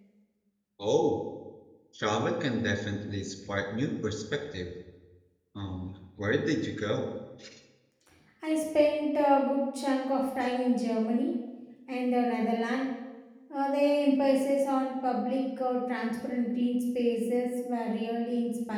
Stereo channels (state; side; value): identical; both; correlation 1.00